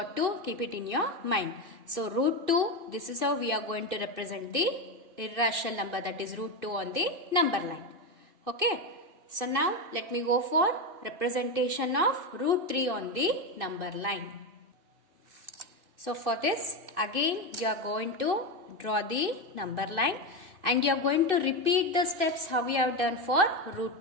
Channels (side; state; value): left; late; 2.6 ms